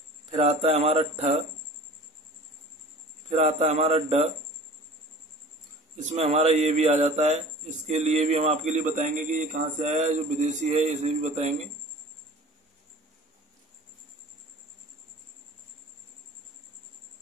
फिर आता है हमारा ठ, फिर आता है हमारा ड, इसमें हमारा ये भी आ जाता है। इसके लिए भी हम आपके लिए बताएंगे कि ये कहाँ से आया है, जो विदेशी है इसे भी बताएंगे।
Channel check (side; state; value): both; normal; correlation 0.43